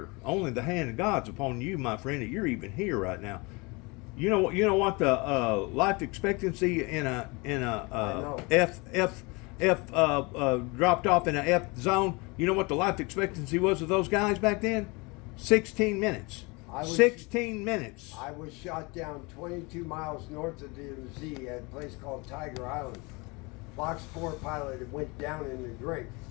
Only the hand of God's upon you, my friend, that you're even here right now. You know what the life expectancy in a F dropped off in a F zone. You know what the life expectancy was of those guys back then? 16 minutes. 16 minutes. I was shot down 22 miles north of DMZ at a place called Tiger Island. Fox 4 pilot had went down in the drink.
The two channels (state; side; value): quieter; right; 27.1 dB